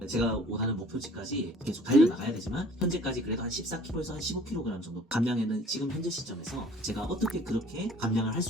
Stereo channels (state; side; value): normal; both; correlation 0.51